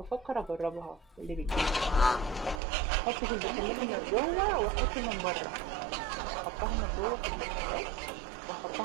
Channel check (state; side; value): drops out; left; at 2.6 s